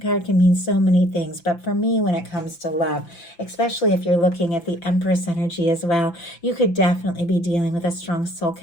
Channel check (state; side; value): late; right; 5.9 ms